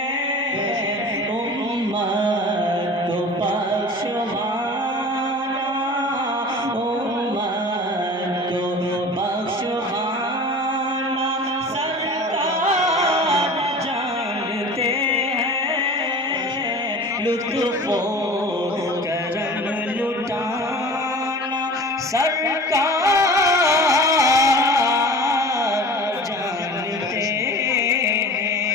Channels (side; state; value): both; normal; correlation 0.39